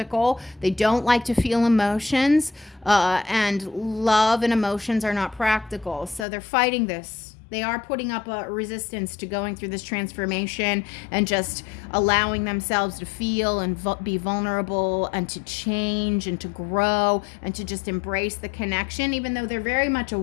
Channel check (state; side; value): drops out; right; at 6.2 s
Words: They don't like to feel emotions, and love and emotions are not practical. So they're fighting this. They are putting up a resistance to going through this transformation and just allowing themselves to feel and be vulnerable and to change and to grow and to just embrace the connection. Even though they're very much